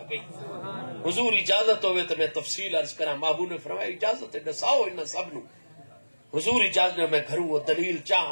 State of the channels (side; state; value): both; inverted; correlation -1.00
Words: گئی. حضور اجازت ہوئے تو میں تفصیل عرض کراں. محبوب نے فرمایا اجازت ہے دساؤ انہاں سب نو. حضور اجازت نے میں گھروں وہ دلیل